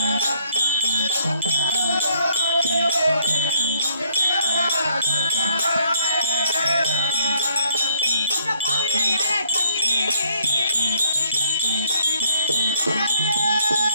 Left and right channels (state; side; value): inverted; both; correlation -0.68